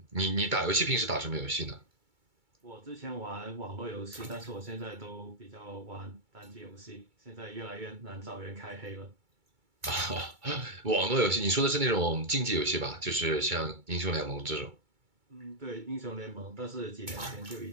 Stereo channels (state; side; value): late; left; 2.3 ms